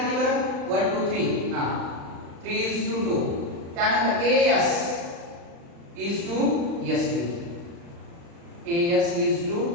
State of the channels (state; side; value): late; left; 35 ms